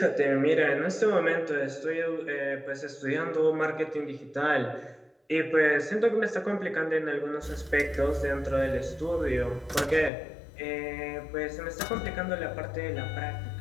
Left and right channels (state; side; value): drops out; right; at 10.1 s